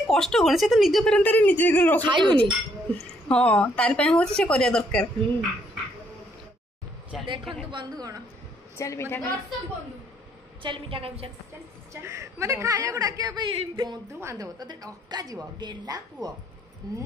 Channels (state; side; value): normal; both; correlation 0.69